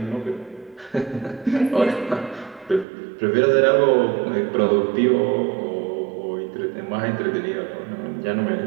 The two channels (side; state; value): left; drops out; at 2.9 s